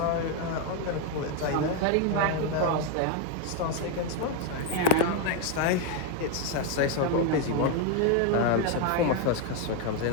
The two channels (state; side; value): different; both; correlation 0.01